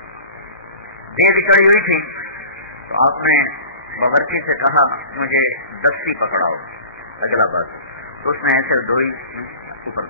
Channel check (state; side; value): inverted; both; correlation -0.39